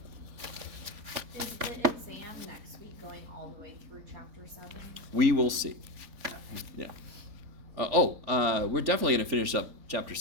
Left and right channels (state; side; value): late; left; 3.4 ms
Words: Is the exam next week going all the way through chapter 7? We will see. Okay. Yeah. We're definitely going to finish up chapter